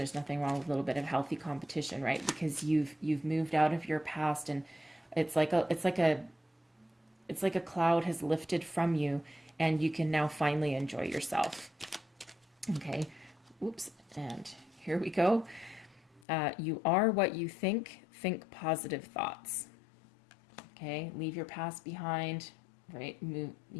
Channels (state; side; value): drops out; right; at 16.2 s